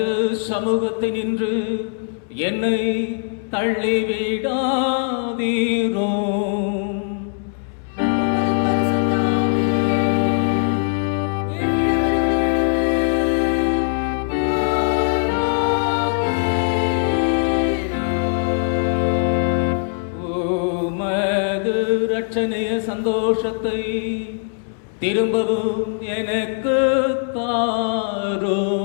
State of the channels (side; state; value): right; silent; 65 dB below the other